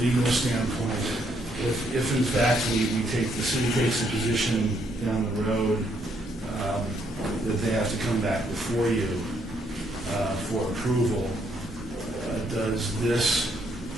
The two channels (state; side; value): normal; both; correlation 0.72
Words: standpoint, if in fact the city takes a position down the road that they have to come back before you for approval, does this?